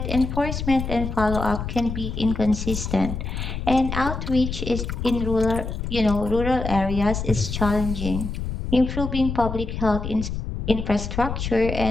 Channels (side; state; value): left; noise; rumble, 5 dB below the sound